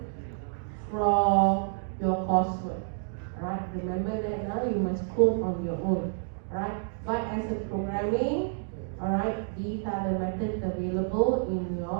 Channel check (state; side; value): silent; left; digital silence